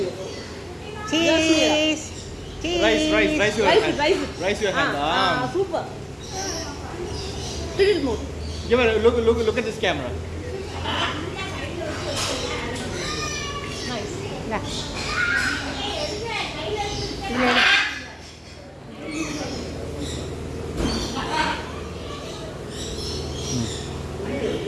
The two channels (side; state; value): both; identical; correlation 1.00